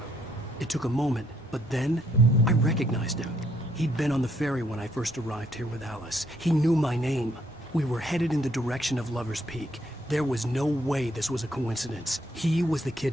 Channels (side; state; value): both; normal; correlation 0.71